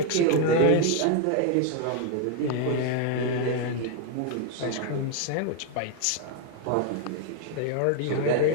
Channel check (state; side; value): different; both; correlation 0.00